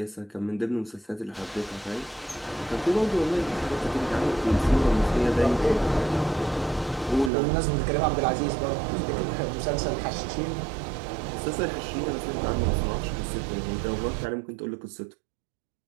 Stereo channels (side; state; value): left; drops out; at 7.3 s